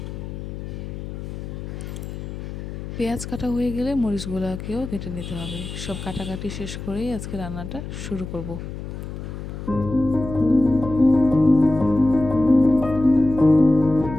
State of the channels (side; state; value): left; noise; hum, 8 dB below the sound